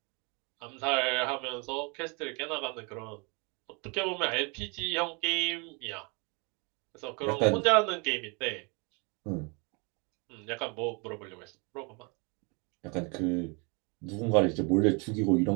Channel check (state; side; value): quieter; left; 31.4 dB